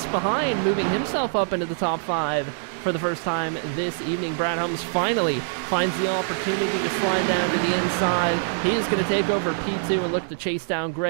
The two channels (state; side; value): silent; left; digital silence